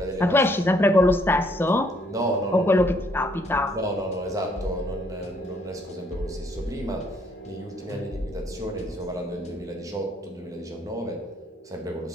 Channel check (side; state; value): both; normal; correlation 0.67